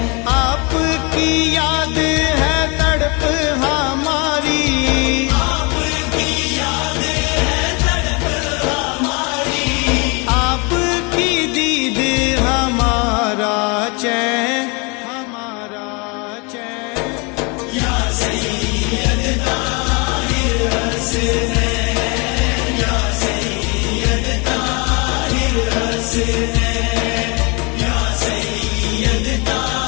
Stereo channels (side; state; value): right; quieter; 29.8 dB